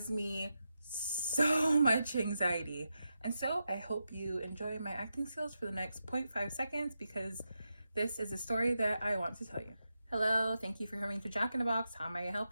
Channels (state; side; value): inverted; both; correlation -0.88